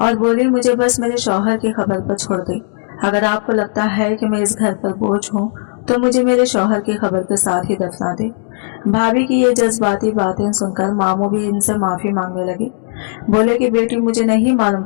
और बोली, मुझे बस मेरे शौहर की खबर पर छोड़ दे। अगर आपको लगता है कि मैं इस घर पर बोझ हूँ तो मुझे मेरे शौहर की खबर के साथ ही दफना दे। भाभी की ये जज्बाती बातें सुनकर मामू भी इनसे माफी मांगने लगे। बोले कि बेटी मुझे नहीं मालूम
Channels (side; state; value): right; silent; digital silence